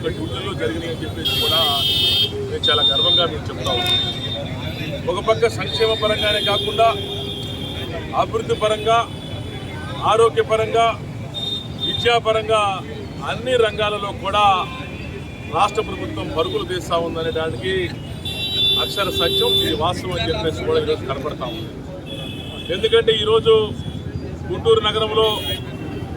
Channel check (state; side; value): identical; both; correlation 1.00